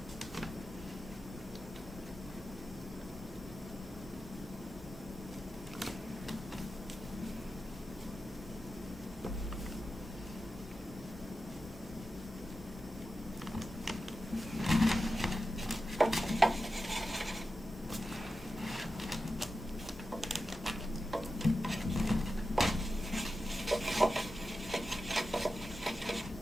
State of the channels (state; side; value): normal; both; correlation 0.92